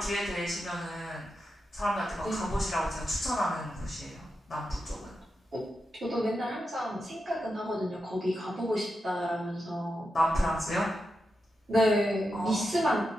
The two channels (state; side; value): normal; both; correlation 0.88